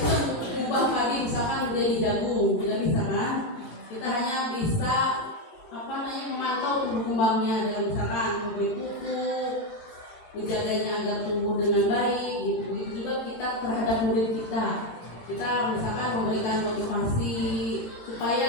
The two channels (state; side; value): late; right; 17 ms